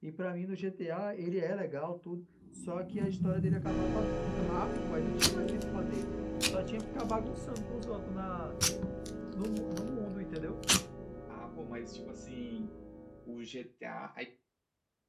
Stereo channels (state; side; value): identical; both; correlation 1.00